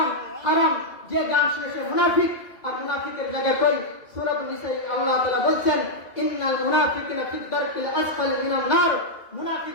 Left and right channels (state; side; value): late; right; 2.4 ms